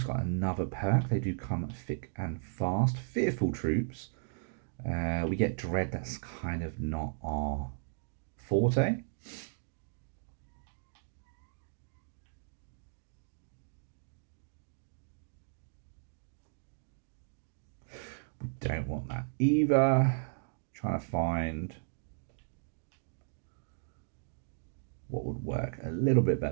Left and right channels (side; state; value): left; silent; digital silence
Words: got another perk. They do come thick and fast. Fearful troops. We get dread. That's kind of not our forte. We don't want that either. Trying to find what would work a little bit